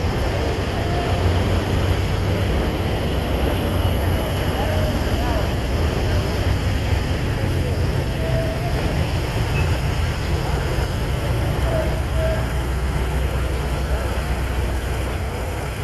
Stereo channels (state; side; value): identical; both; correlation 1.00